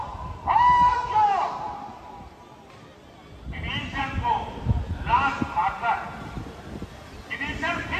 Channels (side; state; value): both; identical; correlation 1.00